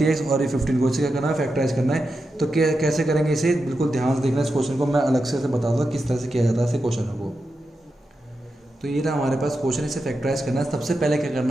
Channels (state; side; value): normal; both; correlation 0.88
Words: और ये 15 को, इसे क्या करना है फैक्टराइज करना है। तो कैसे करेंगे इसे, बिल्कुल ध्यान से देखना इस क्वेश्चन को, मैं अलग से बता दूँगा किस तरह से किया जाता है ऐसे क्वेश्चन को। तो ये रहा हमारे पास क्वेश्चन, इसे फैक्टराइज करना है। सबसे पहले क्या